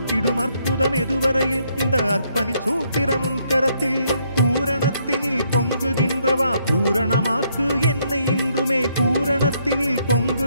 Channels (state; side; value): inverted; both; correlation -0.72